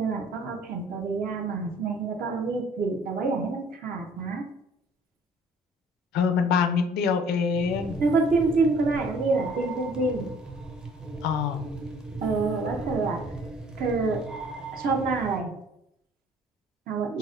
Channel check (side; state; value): both; normal; correlation 0.55